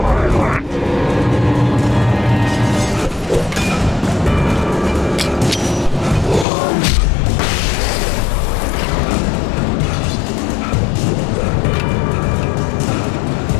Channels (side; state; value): right; drops out; at 6.5 s